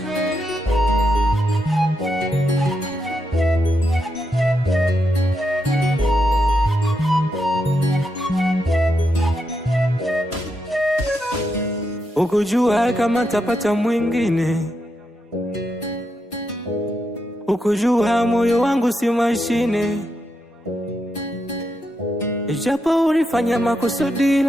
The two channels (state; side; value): normal; both; correlation 0.83